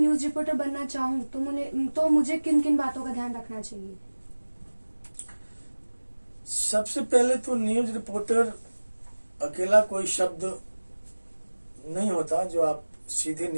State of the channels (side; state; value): both; inverted; correlation -1.00